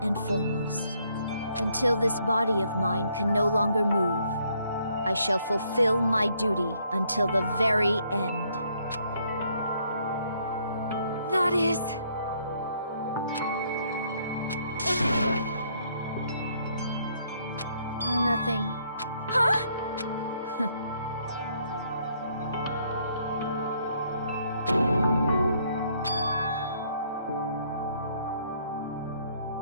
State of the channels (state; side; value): inverted; both; correlation -0.68